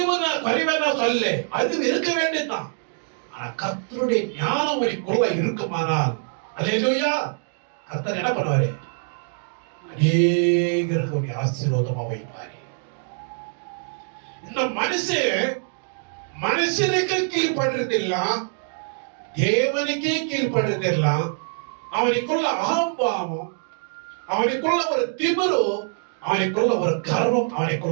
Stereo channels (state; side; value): silent; left; 63 dB below the other